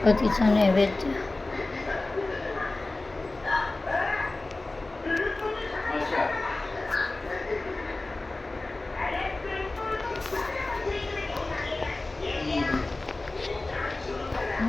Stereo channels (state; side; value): quieter; right; 3.1 dB